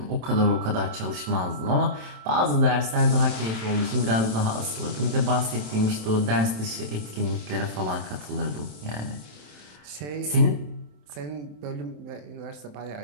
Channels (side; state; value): left; late; 27 ms